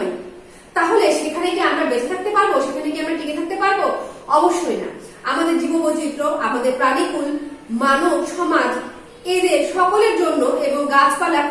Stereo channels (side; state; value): both; identical; correlation 1.00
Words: তাহলে সেখানে কি আমরা বেঁচে থাকতে পারবো, সেখানে কি আমরা টিকে থাকতে পারবো? অবশ্যই না। আমাদের জীববৈচিত্র্য, আমাদের প্রাণীকুল, মানব সমাজ, এদের সকলের জন্য এবং গাছপালা,